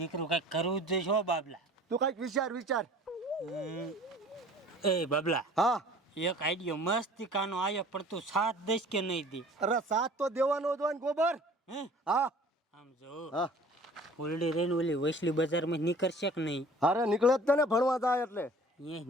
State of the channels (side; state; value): both; normal; correlation 0.48